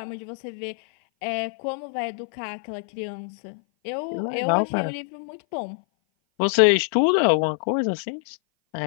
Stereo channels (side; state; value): right; silent; 57 dB below the other